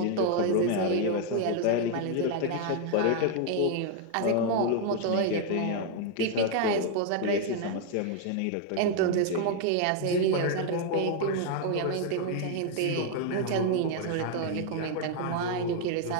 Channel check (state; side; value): different; both; correlation 0.00